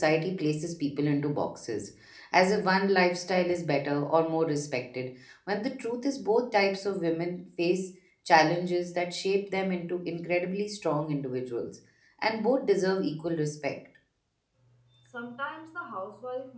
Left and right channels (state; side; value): identical; both; correlation 1.00